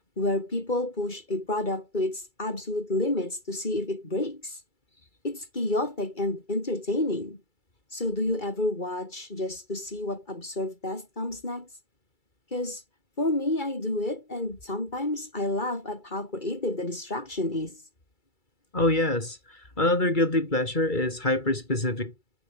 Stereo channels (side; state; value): right; late; 2.3 ms